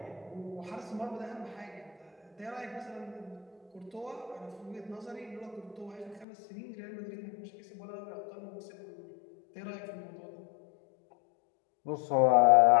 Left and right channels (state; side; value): drops out; right; at 6.2 s